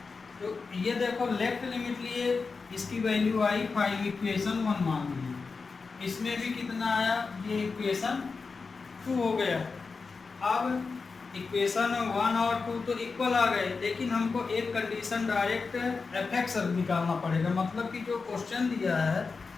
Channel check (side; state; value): right; quieter; 4.6 dB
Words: तो ये देखो लेफ्ट लिमिट लिए, इसकी वैल्यू आई 5, इक्वेशन 1 मान लीजिए, इसमें भी कितना आया, ये इक्वेशन 2 हो गया। अब इक्वेशन 1 और 2 तो इक्वल आ गए, लेकिन हमको एक कंडीशन डायरेक्ट एफ निकालना पड़ेगा, मतलब कि जो क्वेश्चन दिया है